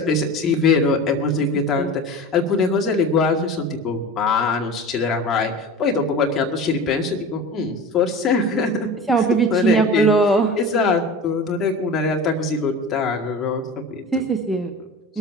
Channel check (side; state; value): both; normal; correlation 0.34